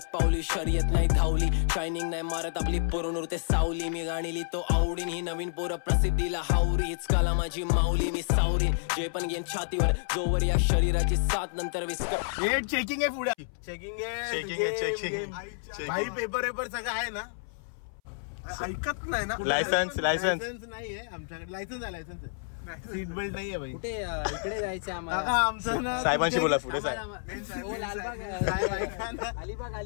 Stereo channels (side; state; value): right; silent; 57 dB below the other